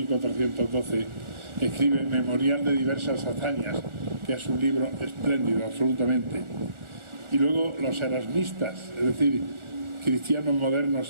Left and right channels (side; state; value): left; late; 1.4 ms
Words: escribe Memorial de diversas hazañas, que es un libro espléndido, absolutamente. Y luego los erasmistas, es decir, cristianos